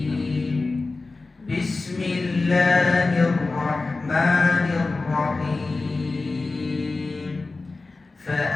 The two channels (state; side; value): quieter; right; 3.6 dB